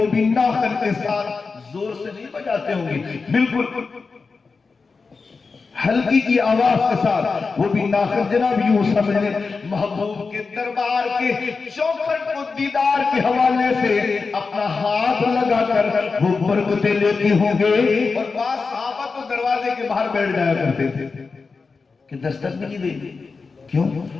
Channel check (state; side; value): quieter; right; 4.5 dB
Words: بھی ناخن کے ساتھ زور سے نہیں بجاتے ہوں گے، بالکل ہلکی کی آواز کے ساتھ وہ بھی ناخن۔ جناب یوں سمجھ لیں محبوب کے دربار کے چوکھٹ کو دیدار کے حوالے سے اپنا ہاتھ لگا کر وہ برکتیں لیتے ہوں گے، اور بعض صحابہ تو دروازے کے باہر بیٹھ جایا کرتے تھے کہ دستک بھی نہیں دیں گے۔ کیوں؟